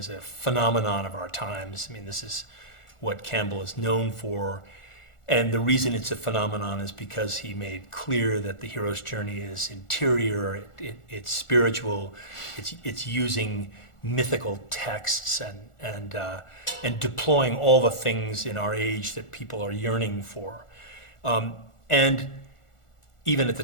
a phenomenon of our times. I mean, this is what Campbell is known for. And the reason it's a phenomenon is because he made clear that the hero's journey is interior, it's spiritual, it's using mythical texts and deploying all the things in our age that people are yearning for. And even at the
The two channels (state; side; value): late; right; 1.4 ms